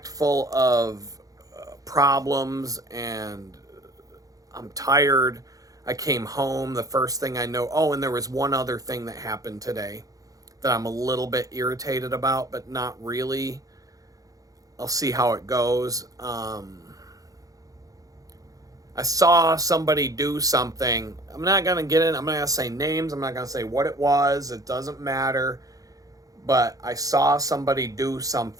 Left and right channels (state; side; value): late; left; 0.17 ms